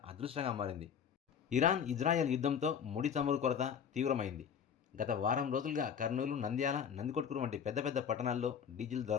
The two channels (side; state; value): right; quieter; 7.6 dB